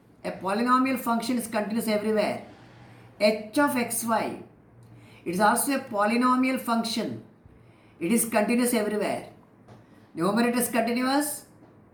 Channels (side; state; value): both; identical; correlation 1.00